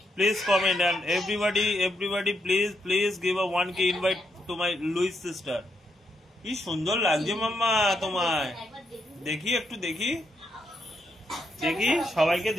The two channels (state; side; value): normal; both; correlation 0.79